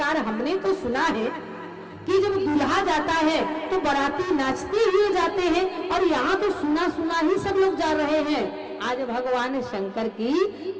हमने तो सुना है कि जब दूल्हा जाता है तो बाराती नाचते हुए जाते हैं, और यहाँ तो सुना सुना ही सब लोग जा रहे हैं। आज भगवान शंकर की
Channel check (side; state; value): both; identical; correlation 1.00